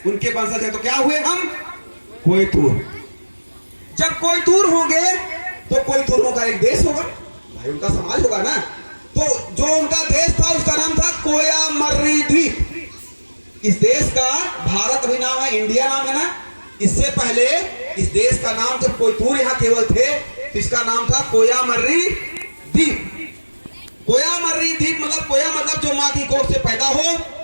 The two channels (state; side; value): inverted; both; correlation -1.00